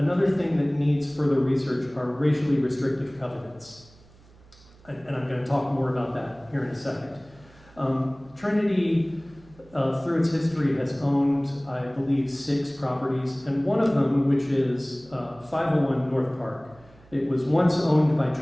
thing that needs further research are racially restrictive covenants. And I'm going to talk more about that here in a second. Trinity, through its history, has owned, I believe, 6 properties, and one of them, which is 501 North Park. It was once owned by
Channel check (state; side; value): noise; right; hum, 26 dB below the sound